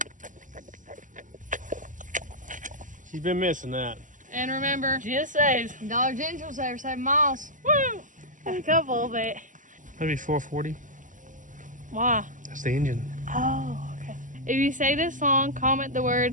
She's been missing that. And remember, GSAs. Dollar General saver, 7 miles. Woo! A couple of it. That'd be 440. Why? That's the engine. Oh, okay. If you say this song, comment the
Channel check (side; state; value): left; late; 0.37 ms